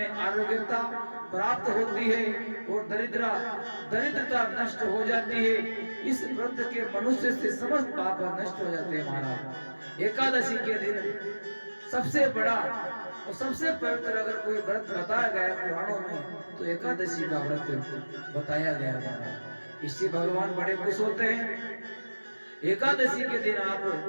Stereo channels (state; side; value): inverted; both; correlation -1.00